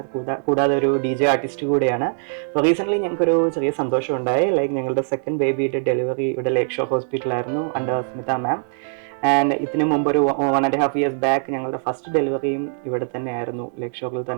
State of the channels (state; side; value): silent; left; digital silence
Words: കൂടാതെ ഒരു DJ ആർട്ടിസ്റ്റ് കൂടെയാണ്. അപ്പോൾ റീസെൻ്റ്ലി ഞങ്ങൾക്കൊരു ചെറിയ സന്തോഷം ഉണ്ടായി. ലൈക്ക് ഞങ്ങളുടെ സെക്കൻഡ് ബേബിയുടെ ഡെലിവറി ഇവിടെ ലേക്ക് ഷോർ ഹോസ്പിറ്റലായിരുന്നു അണ്ടർ സ്മിത മാം. ആൻഡ് ഇതിന് മുമ്പ് ഒരു 1.5 years ബാക്ക് ഞങ്ങളുടെ ഫസ്റ്റ് ഡെലിവറിയും ഇവിടെ തന്നെ ആയിരുന്നു, ലേക്ക് ഷോറിൽ